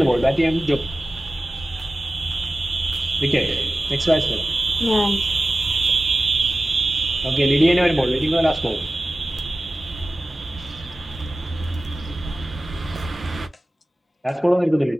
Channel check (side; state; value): both; normal; correlation 0.95